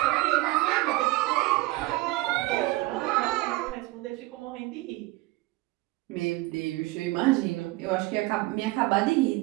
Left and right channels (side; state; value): left; quieter; 20.1 dB